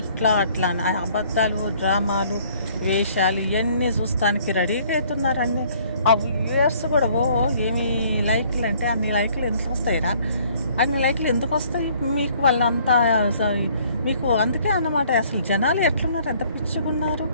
ఇట్లా అట్లా అబద్ధాలు, డ్రామాలు, వేషాలు ఇవన్నీ చూస్తానికి రెడీగా అవుతున్నారు. అన్నీ ఆ వ్యూయర్స్ కూడా ఏమి లైక్లు అంటే అన్ని లైక్లు ఎందుకు వస్తాయిరా? అన్ని లైక్లు ఎందుకు వస్తాయి మీకు? వాళ్ళంతా మీకు అందుకే అన్నమాట. అసలు జనాలు ఎట్లున్నారు, ఎంత పిచ్చిగున్నారు,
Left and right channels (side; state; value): both; inverted; correlation -0.60